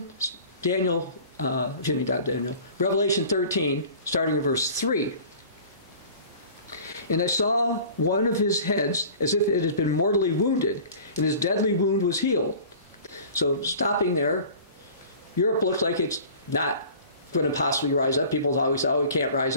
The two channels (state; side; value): inverted; both; correlation -0.44